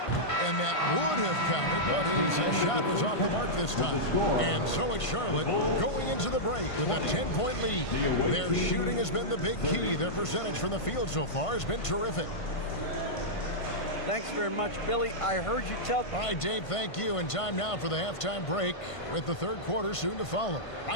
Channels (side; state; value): right; late; 1.5 ms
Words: And that would have counted, but his shot was off the mark this time. And so it's Charlotte going into the break with a 10-point lead. Their shooting has been the big key. Their percentage from the field so far has been terrific. Thanks very much, Billy. I heard you tell... All right, Dave, thank you. And time now for the halftime break with the third quarter soon to follow.